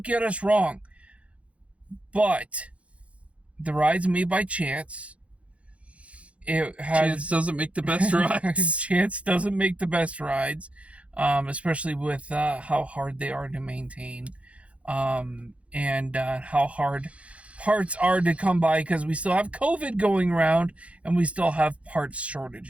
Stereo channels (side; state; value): left; late; 0.063 ms